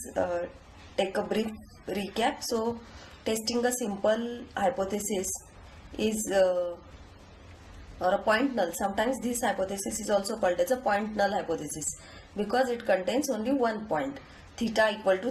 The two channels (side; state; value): both; identical; correlation 1.00